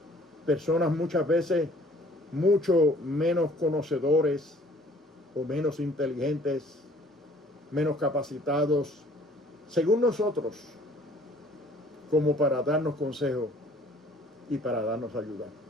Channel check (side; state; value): both; normal; correlation 0.56